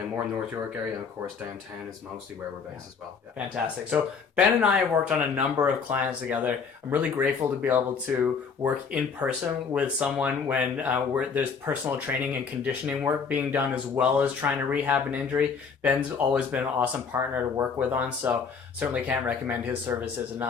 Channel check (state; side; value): quieter; right; 5.7 dB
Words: more North York area, and of course downtown is mostly where we're based as well. Yeah. Fantastic. So Ben and I have worked on a number of clients together. I'm really grateful to be able to work in person with someone when there's personal training and conditioning work being done as well as trying to rehab an injury. Ben's always been an awesome partner to work with on, so certainly can't recommend his services